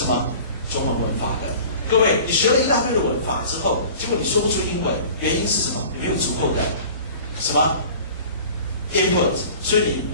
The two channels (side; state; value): both; inverted; correlation -0.43